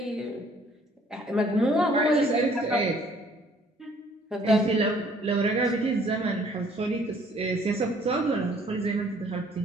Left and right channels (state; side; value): normal; both; correlation 0.59